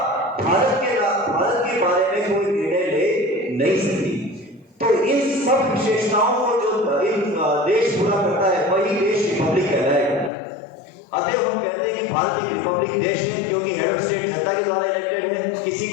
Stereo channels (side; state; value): right; drops out; at 10.3 s